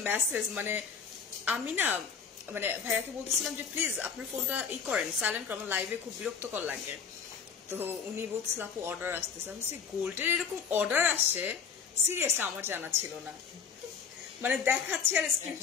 মেসেজ, মানে আমি না মানে ভাইয়াকে বলতেছিলাম যে প্লিজ আপনার ফোনটা করেন, সাইলেন্ট করেন, আমার লাইভে খুব বিরক্তকর লাগে। তো উনি বলছিল আপু অর্ডার আসতেছে। আমি বলছি গোল্ডের এরকম অর্ডার আসে? সিরিয়াসলি আমার জানা ছিল না, মানে দেখাচ্ছে আর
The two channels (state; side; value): quieter; right; 6.3 dB